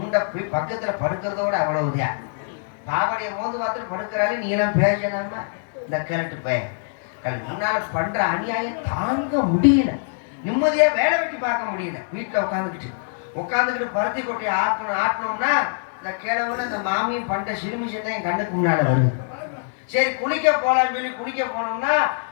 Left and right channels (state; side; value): silent; right; digital silence